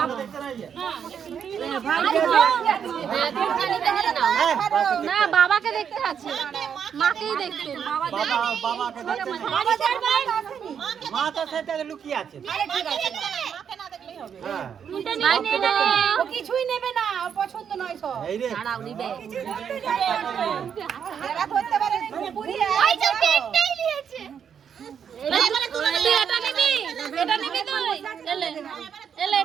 না বাবাকে দেখতে আছে মাকেই দেখতে মা তো সেটা লুকিয়ে আছে কিছুই নেবে না পছন্দ নয় সব এই রে দাঁড়াও নিবে তুই এটা নিবি তুই এলে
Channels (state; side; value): quieter; left; 7.7 dB